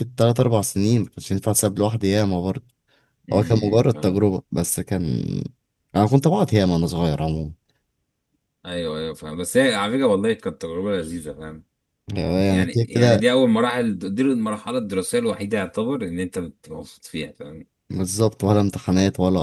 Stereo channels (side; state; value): both; identical; correlation 1.00